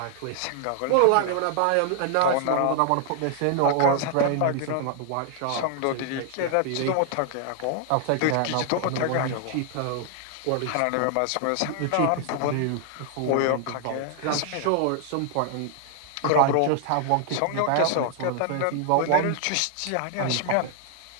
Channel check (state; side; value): different; both; correlation 0.00